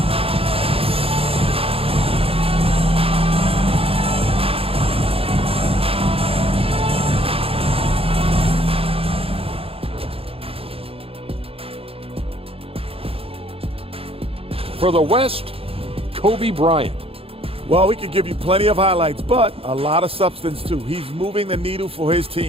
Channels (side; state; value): left; late; 0.27 ms